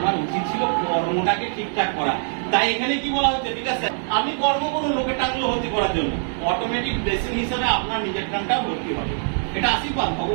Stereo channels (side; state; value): left; silent; digital silence